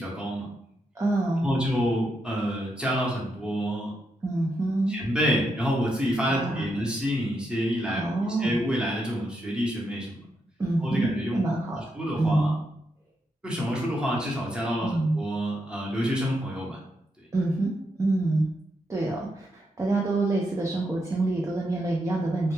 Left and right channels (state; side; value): normal; both; correlation 0.82